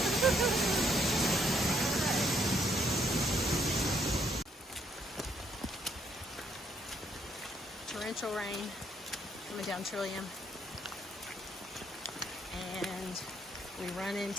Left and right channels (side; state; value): both; normal; correlation 0.70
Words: Torrential rain coming down Trillium, and we run